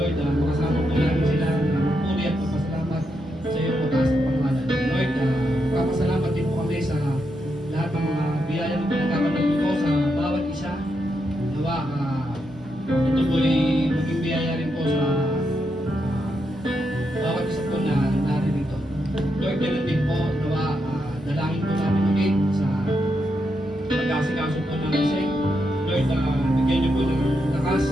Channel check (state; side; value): normal; both; correlation 0.82